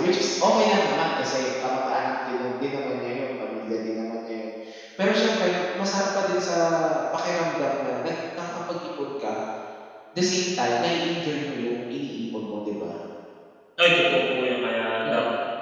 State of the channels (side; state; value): both; identical; correlation 1.00